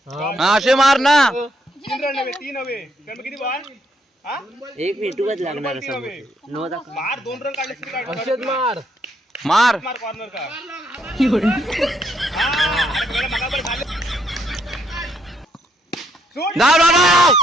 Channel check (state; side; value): normal; both; correlation 0.73